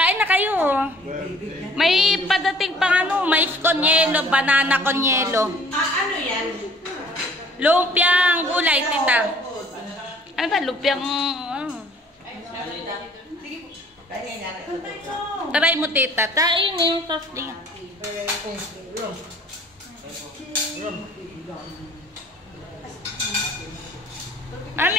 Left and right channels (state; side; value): normal; both; correlation 0.54